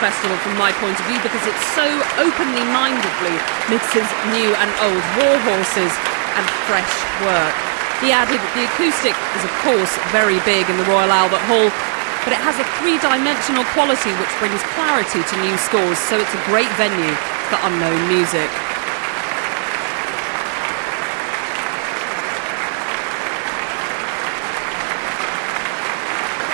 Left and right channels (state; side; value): silent; left; 67 dB below the other